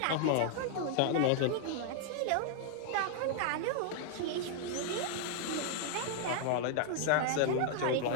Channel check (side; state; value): both; different; correlation 0.00